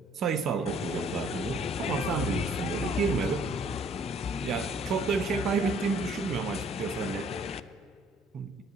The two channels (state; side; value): normal; both; correlation 0.59